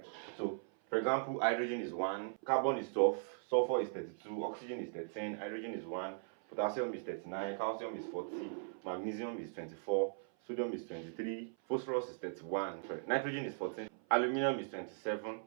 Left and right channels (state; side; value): silent; left; 52 dB below the other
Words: So, for example, hydrogen is 1, carbon is 12, sulfur is 32, oxygen is 13, hydrogen is 1, potassium is 39, calcium is 40, magnesium is 24, sodium is 23, phosphorus is 31, nitrogen is 14, aluminium is 27,